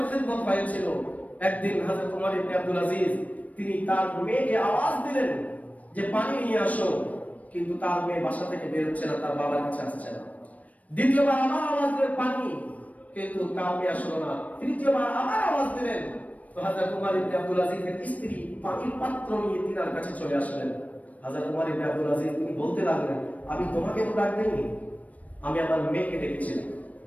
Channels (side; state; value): right; late; 0.070 ms